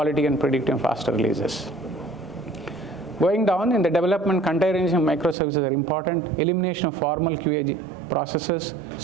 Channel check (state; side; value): drops out; left; at 5.4 s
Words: and predictive faster releases. Going down in the development, containerization microservices are important. Elimination of formal QA processes,